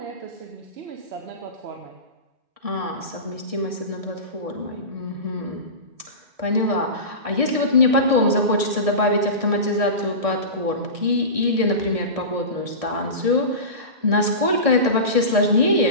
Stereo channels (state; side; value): late; left; 1.6 ms